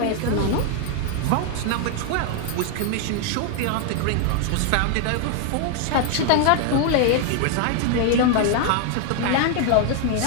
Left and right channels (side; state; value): both; different; correlation 0.01